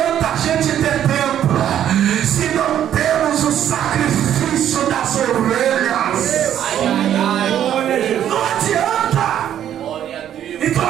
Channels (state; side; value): quieter; left; 10.5 dB